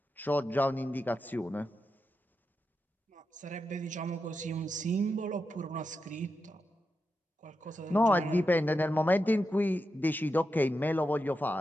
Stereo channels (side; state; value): both; normal; correlation 0.88